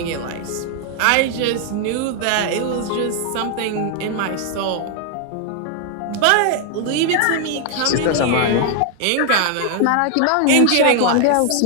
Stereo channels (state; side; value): different; both; correlation 0.00